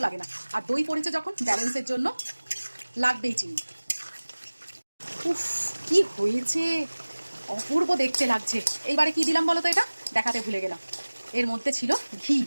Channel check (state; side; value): inverted; both; correlation -1.00